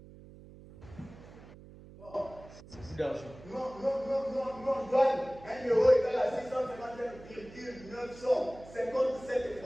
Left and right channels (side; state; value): right; noise; hum, 19 dB below the sound